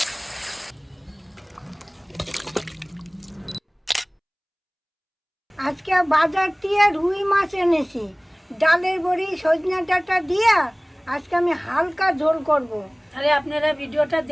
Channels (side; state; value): both; identical; correlation 1.00